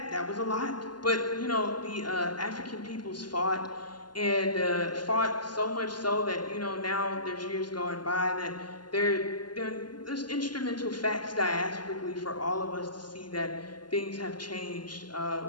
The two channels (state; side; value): late; right; 0.71 ms